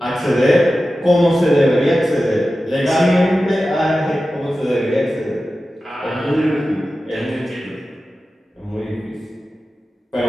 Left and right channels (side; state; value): both; normal; correlation 0.94